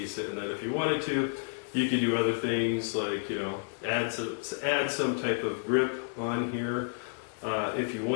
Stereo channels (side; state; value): right; silent; 57 dB below the other